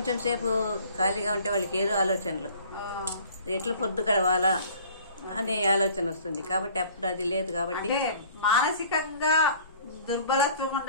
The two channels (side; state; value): both; inverted; correlation -0.50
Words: సేపు ఖాళీగా ఉంటే వాళ్ళకి ఏదో ఆలోచనలు, ఎట్లా పొద్దు గడవాలా అనే ఆలోచన వస్తుంది. కాబట్టి అప్పుడు అది లేదు. కాబట్టి మానసికంగా దుర్బలత్వం